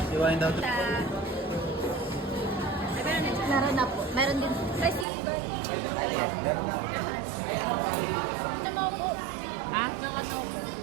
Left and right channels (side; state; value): left; drops out; at 5.1 s